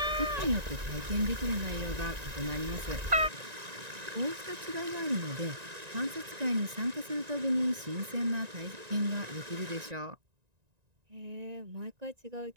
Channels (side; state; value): left; late; 1.9 ms